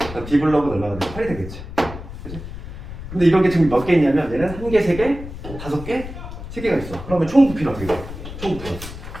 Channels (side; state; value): left; noise; rumble, 11 dB below the sound